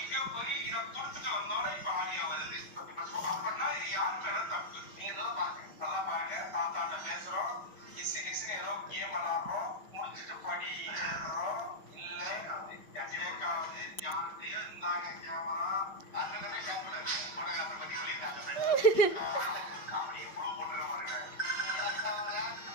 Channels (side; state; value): right; late; 5.7 ms